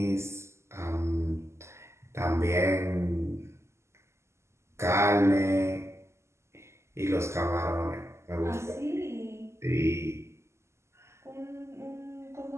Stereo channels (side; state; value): left; late; 0.13 ms